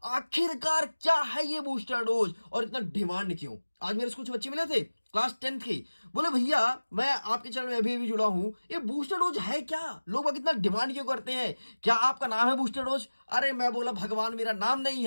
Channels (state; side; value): inverted; both; correlation -1.00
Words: आखिरकार क्या है ये बूस्टर डोज और इतना डिमांड क्यों। आज मेरे से कुछ बच्चे मिले थे क्लास 10th के, बोले भैया मैं आपके चैनल में अभी जुड़ा हूं, ये बूस्टर डोज है क्या, लोग इतना डिमांड क्यों करते हैं, क्या आपका नाम है बूस्टर डोज। अरे मैं बोला भगवान मेरा नाम नहीं